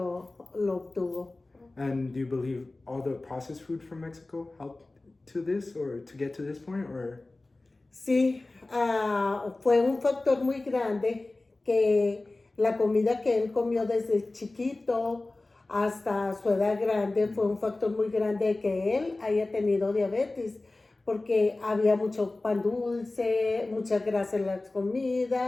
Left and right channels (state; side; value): quieter; right; 3.1 dB